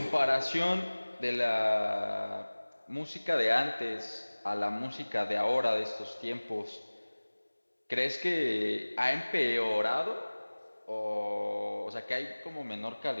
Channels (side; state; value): both; inverted; correlation -1.00